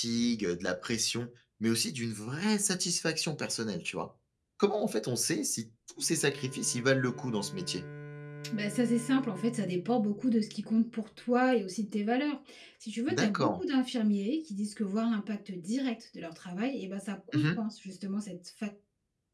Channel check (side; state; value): both; identical; correlation 1.00